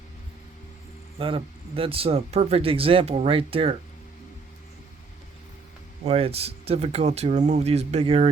That's a perfect example right there. Why it's difficult to remove these big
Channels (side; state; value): left; quieter; 4.6 dB